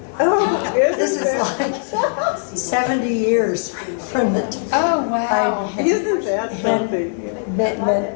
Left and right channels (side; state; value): right; silent; 58 dB below the other